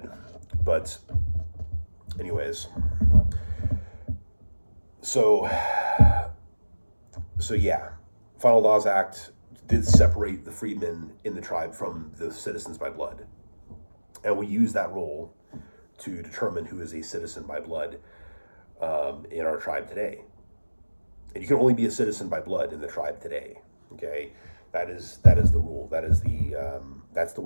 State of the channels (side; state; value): both; inverted; correlation -1.00